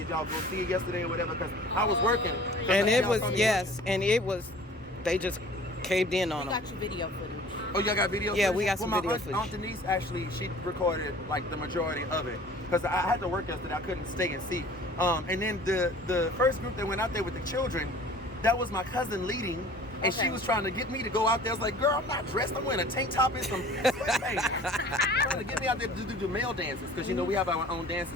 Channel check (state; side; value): normal; both; correlation 0.47